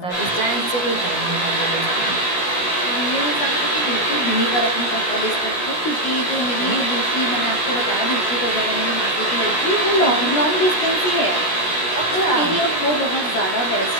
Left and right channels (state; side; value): late; right; 16 ms